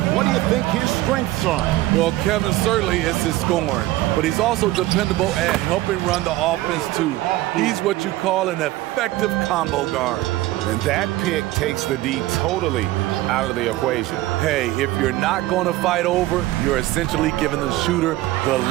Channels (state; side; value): quieter; left; 17.0 dB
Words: what do you think his strengths are? Well, Kevin, certainly it's his scoring, but he's also dependable at helping run the offense, too. He's what you call an effective combo guard. And that pick takes the D totally out of the equation. Hey, if you're not going to fight over, you're essentially giving the shooter the